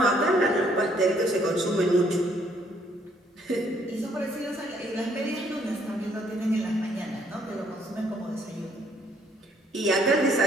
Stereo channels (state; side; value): normal; both; correlation 0.66